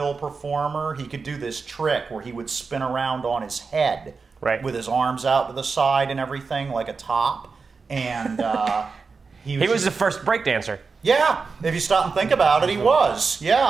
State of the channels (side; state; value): left; quieter; 4.7 dB